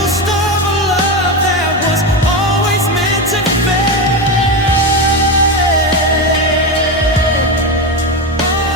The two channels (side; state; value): both; normal; correlation 0.15